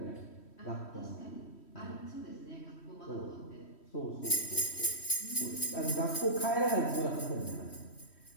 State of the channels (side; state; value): right; late; 3.1 ms